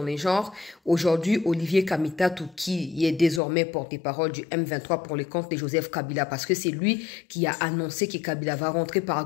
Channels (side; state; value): right; drops out; at 3.4 s